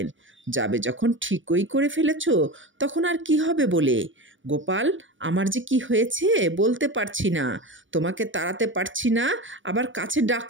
যাবে যখন ঠিকই করে ফেলেছ, তখন আর কি হবে বলে? গোপাল, আমার যে কি হয়েছে বলতে পারছি না, তোমাকে তাড়াতে পারছি না, আবার কাছে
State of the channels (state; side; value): late; left; 0.56 ms